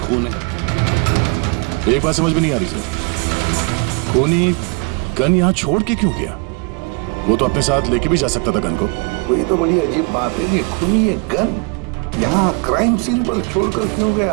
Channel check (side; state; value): left; quieter; 30.2 dB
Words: है। एक बात समझ में नहीं आ रही सर, खूनी गन यहां छोड़ के क्यों गया? वो तो अपने साथ लेके भी जा सकता था गन को। वही तो बड़ी अजीब बात है कि खूनी ये गन यहाँ क्राइम सीन पर छोड़कर क्यों